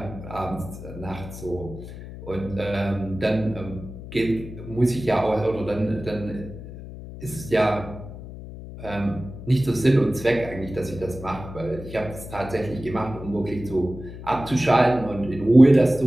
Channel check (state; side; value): noise; left; hum, 12 dB below the sound